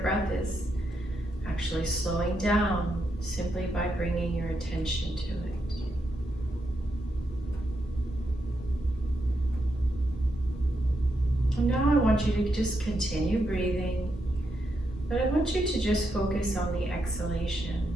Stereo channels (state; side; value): normal; both; correlation 0.82